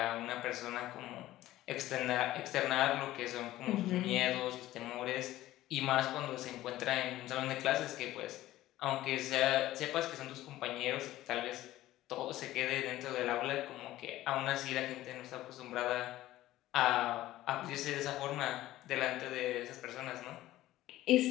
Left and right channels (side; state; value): right; quieter; 15.3 dB